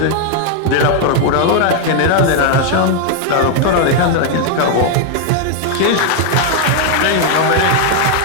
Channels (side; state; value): both; different; correlation 0.00